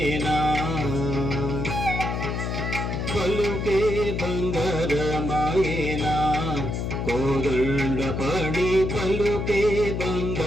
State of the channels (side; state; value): left; noise; hum, 2 dB below the sound